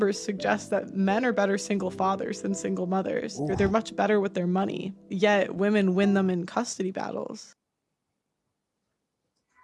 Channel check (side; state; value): both; identical; correlation 1.00